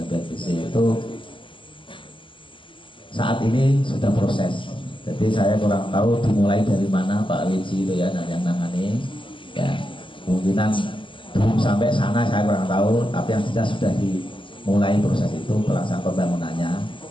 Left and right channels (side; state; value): right; late; 0.25 ms